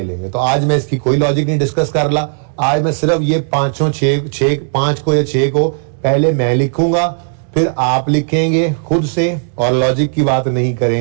लेंगे। तो आज मैं इसकी कोई लॉजिक नहीं डिस्कस कर रहा, आज मैं सिर्फ ये 5 को या 6 को पहले मैं लिखूंगा, फिर आप लिखेंगे खुद से, और लॉजिक की बात नहीं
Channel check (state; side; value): silent; left; digital silence